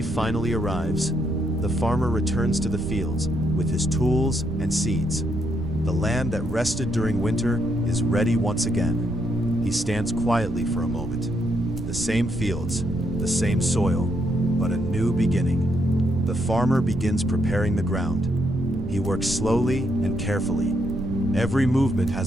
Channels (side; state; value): right; noise; rumble, 7 dB below the sound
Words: finally arrives. The farmer returns to the fields with his tools and seeds. The land that rested during winter is ready once again. He stands quietly for a moment. The same fields, the same soil, but a new beginning. The farmer begins preparing the ground. He works slowly and carefully. Every movement